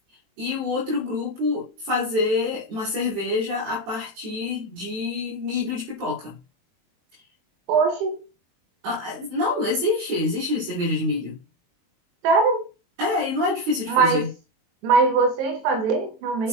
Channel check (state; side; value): late; left; 23 ms